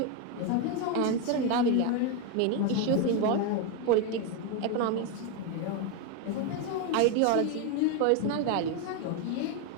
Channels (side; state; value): both; different; correlation 0.02